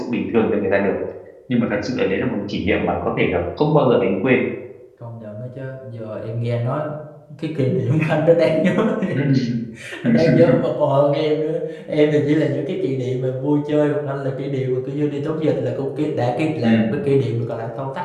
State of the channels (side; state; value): both; identical; correlation 1.00